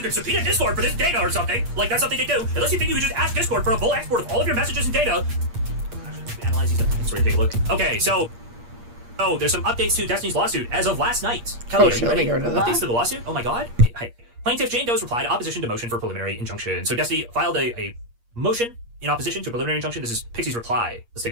can subpoena Discord for this data or something, like that's something to do, unless you think you can just ask Discord for a full export of all of your messages and data. Analyze these things. Let's take a look. Okay, so, there's some updates to Destiny's lawsuit as of last night. Kelly, Oh, are shit, you let me ready? get rid of that. Updates to the lawsuit? Oh my god. Hi. Plaintiff Jane Doe's replied opposition to motion for preliminary injunction. So Destiny filed a motion in opposition to a preliminary injunction. This is Pixie's reply. Let's take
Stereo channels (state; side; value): late; left; 8.5 ms